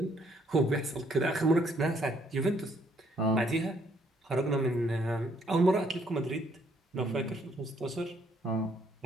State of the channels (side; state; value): both; normal; correlation 0.68